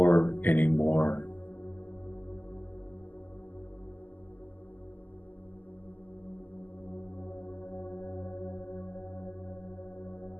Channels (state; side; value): late; right; 0.085 ms